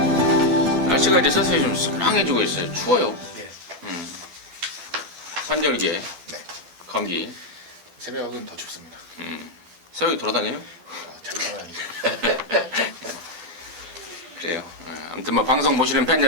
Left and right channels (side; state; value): left; late; 12 ms